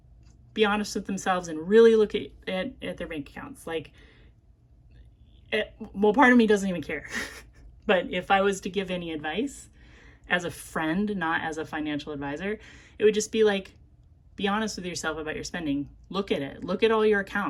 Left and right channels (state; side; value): identical; both; correlation 1.00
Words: be honest with themselves and really look at their bank accounts. Like, part of me doesn't even care. But if I was to give any advice as a friend, not as a financial advisor, it would just be like, be honest with yourself about your spending. Look at it. Look at all your